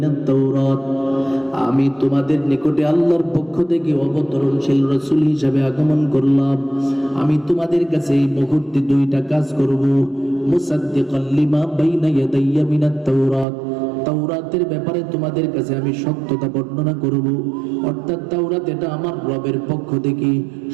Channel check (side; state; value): left; drops out; at 13.5 s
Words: তাওরাত। আমি তোমাদের নিকটে আল্লাহর পক্ষ থেকে অবতরণশীল রাসূল হিসেবে আগমন করলাম। আমি তোমাদের কাছে এই মুহূর্তে দুইটা কাজ করব। মুসাদ্দিকান লিমা বাইনা ইয়াদাইয়া মিনাত তাওরাত, তাওরাতের ব্যাপারে তোমাদের কাছে আমি সত্যতা বর্ণনা করব, অর্থাৎ তাওরাত এটা আমার রবের পক্ষ থেকে